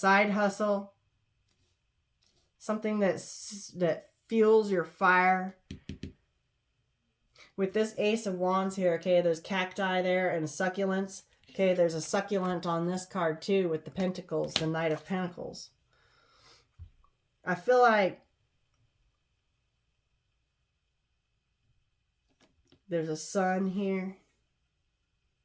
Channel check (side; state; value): both; identical; correlation 1.00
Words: hustle, something that fuels your fire. With this Ace of Wands here, okay, there's cacti there and succulents. Okay, there's a succulent on this card too with the Pentacles, the Knight of Pentacles. I feel like there's a sun here.